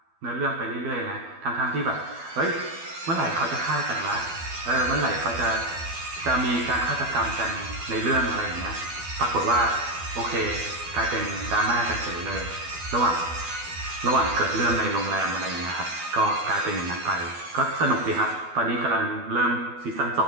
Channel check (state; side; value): late; left; 12 ms